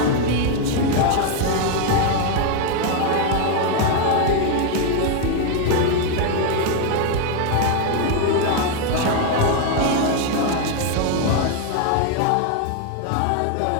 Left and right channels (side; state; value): both; different; correlation 0.01